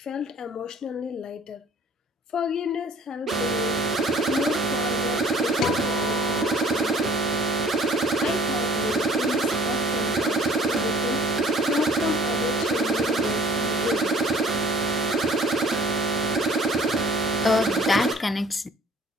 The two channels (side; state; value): both; normal; correlation 0.53